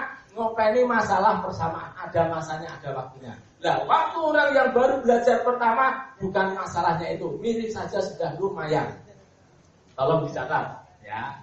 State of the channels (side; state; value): both; identical; correlation 1.00